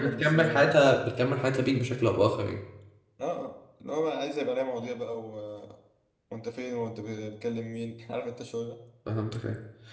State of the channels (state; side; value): identical; both; correlation 1.00